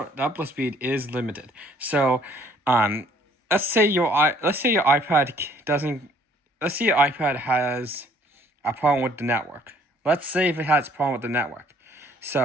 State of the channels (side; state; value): both; normal; correlation 0.60